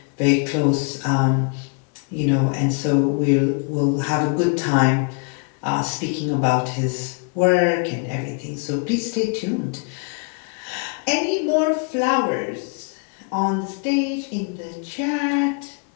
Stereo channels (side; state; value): right; quieter; 37.4 dB